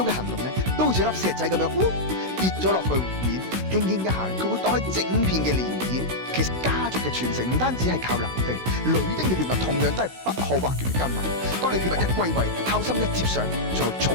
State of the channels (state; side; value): late; left; 16 ms